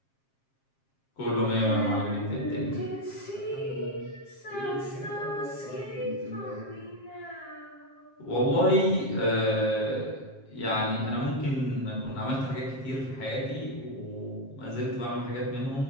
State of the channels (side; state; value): right; late; 7.5 ms